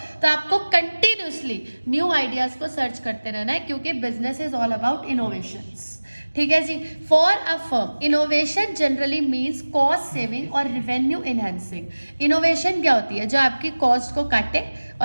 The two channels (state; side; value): inverted; both; correlation -1.00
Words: तो आपको कंटिन्यूअसली न्यू आइडियाज को सर्च करते रहना है, क्योंकि business is all about innovations. ठीक है जी। For a firm innovation generally means cost saving और रिवेन्यू इनहेंसिंग। इनोवेशन क्या होती है, जो आपकी कॉस्ट को काटे